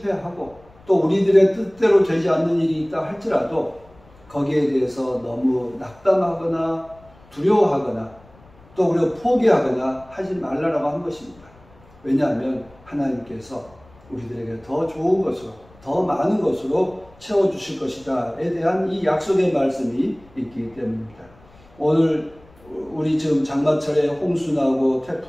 또 우리들의 뜻대로 되지 않는 일이 있다 할지라도 거기에 대해서 너무 낙담하거나 두려워하거나 또 우리가 포기하거나 하지 말라라고 한 것입니다. 왜냐하면 하나님께서 우리들에게 더 좋은 것으로, 더 많은 것으로 채워주실 것이다에 대한 이 약속의 말씀이 있기 때문입니다. 오늘 우리 지금 장마철에 홍수 나고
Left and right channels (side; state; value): left; noise; rumble, 26 dB below the sound